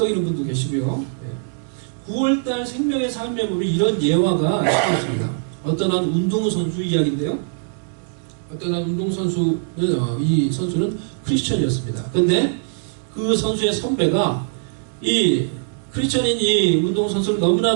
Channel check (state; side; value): silent; left; digital silence